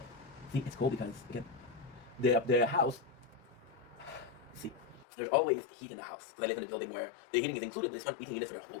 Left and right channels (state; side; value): drops out; right; at 5.1 s